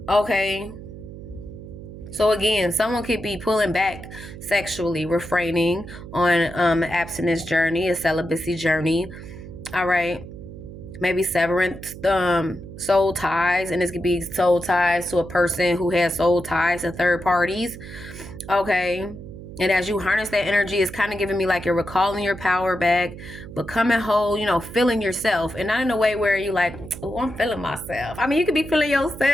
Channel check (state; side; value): noise; right; hum, 13 dB below the sound